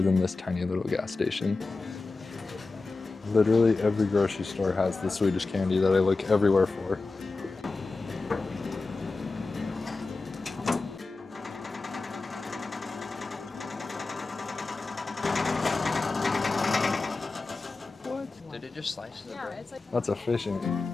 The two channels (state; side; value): quieter; right; 3.7 dB